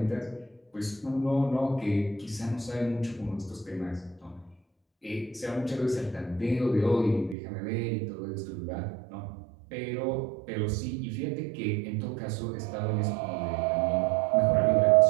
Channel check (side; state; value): left; drops out; at 7.4 s